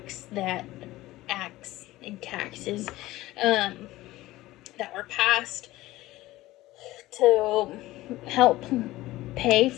and taxes that were passed to help pay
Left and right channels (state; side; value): quieter; right; 17.4 dB